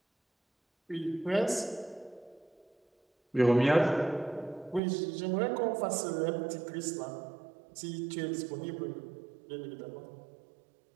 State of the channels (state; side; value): drops out; left; at 4.8 s